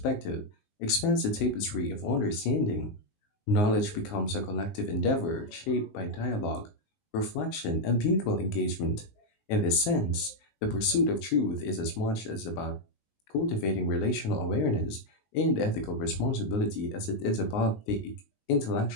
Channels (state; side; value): late; right; 19 ms